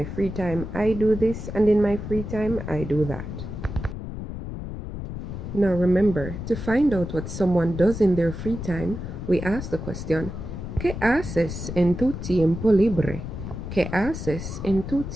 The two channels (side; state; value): left; noise; rumble, 7 dB below the sound